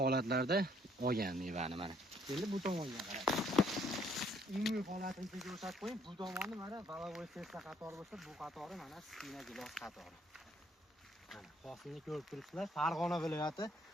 olgan mevani mana. Endi bu tomonga qarang. Umumiy holatini ko'rsatib qo'ying. Bu tomonni mana valavoy sersa qatori bo'lsa, bu qatori mana skina gilos qatori. Mana hosilni ko'rib turibsizlar. Farg'ona viloyati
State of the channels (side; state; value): both; normal; correlation 0.66